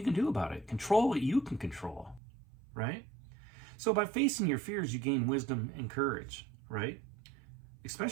can do about it. Control what you can control, right? So by facing your fears, you gain wisdom and courage, right?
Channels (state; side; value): drops out; left; at 2.2 s